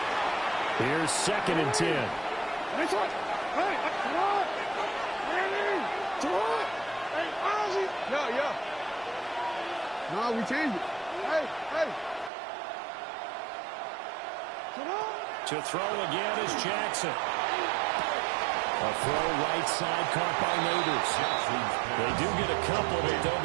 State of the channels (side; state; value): left; drops out; at 12.3 s